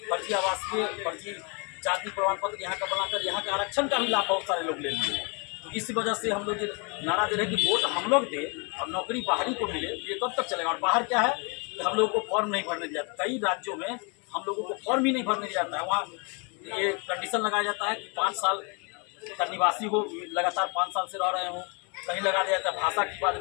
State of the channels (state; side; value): quieter; right; 33.4 dB